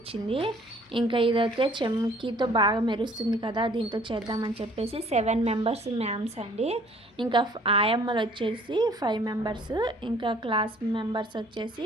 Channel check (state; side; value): normal; both; correlation 0.56